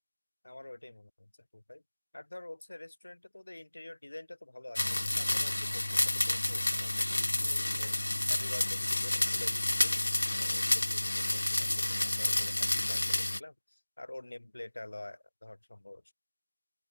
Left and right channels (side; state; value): both; inverted; correlation -1.00